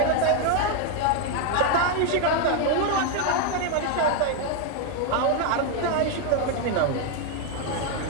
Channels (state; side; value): different; both; correlation 0.01